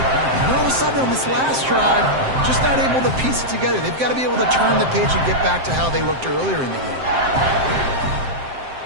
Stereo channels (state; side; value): late; left; 7.6 ms